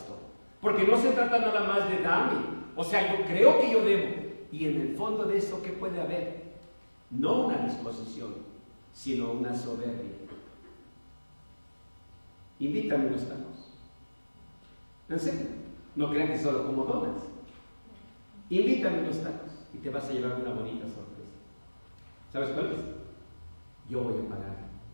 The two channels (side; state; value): both; inverted; correlation -1.00